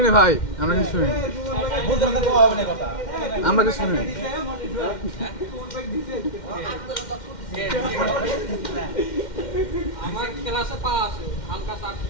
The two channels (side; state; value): right; late; 2.1 ms